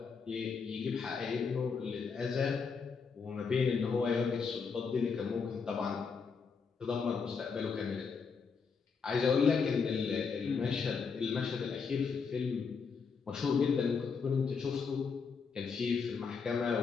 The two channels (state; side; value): quieter; right; 5.5 dB